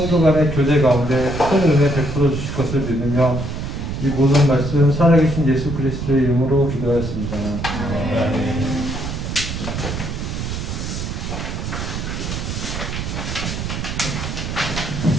간의 교제 가운데 큰 은혜 베풀어 주실 것을 믿으며 이 모든 말씀 살아계신 예수 그리스도의 이름으로 기도하였습니다.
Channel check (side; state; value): right; noise; rumble, 5 dB below the sound